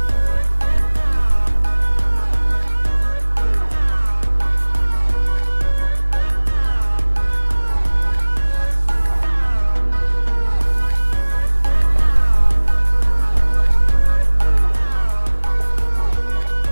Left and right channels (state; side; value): inverted; both; correlation -1.00